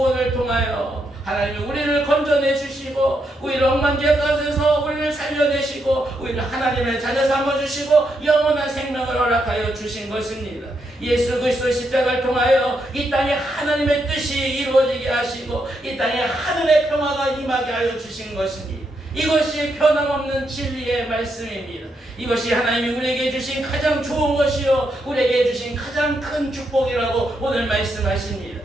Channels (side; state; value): both; normal; correlation 0.80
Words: 통하여 하나님이 우리를 건져내 주시고 우리를 엉망지에 가져서 우리를 살려내시고 우리를 하나님의 자녀 삼아주시고 영원한 생명을 허락하여 주신 것입니다. 예수 그리스도의 십자가를 통하여 이 땅에 하나님의 뜻이 이루어지게 하시고 이 땅에 하늘의 평화가 임하게 하여 주신 것입니다. 이것이 변함없는 진리의 말씀입니다. 이것이 하나님이 우리에게 주신 가장 좋은 것이요 우리에게 주신 가장 큰 축복이라고 오늘 말씀하십니다.